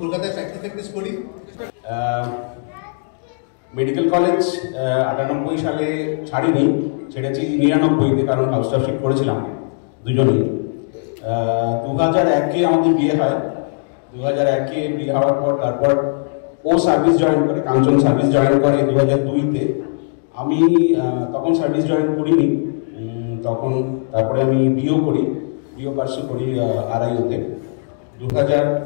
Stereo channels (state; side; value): silent; right; digital silence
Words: কলকাতায় প্র্যাকটিস করি। মেডিকেল কলেজ 98 সালে ছাড়িনি, ছেড়েছি 99-তে, কারণ হাউসটাফশিপ করেছিলাম দুজনেই। 2001-এ আমাদের বিয়ে হয়। 2001-এ বিয়ে হওয়ার পর তারপর ও সার্ভিস জয়েন করে, কাঞ্চন সার্ভিস জয়েন করে 2002-তে। আমি তখন সার্ভিস জয়েন করিনি, তখন তারপরে আমি বিয়েও করি। ডিও পার্সে করি আড়াইওতে।